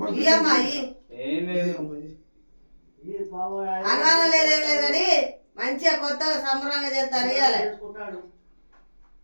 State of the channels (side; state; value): both; inverted; correlation -1.00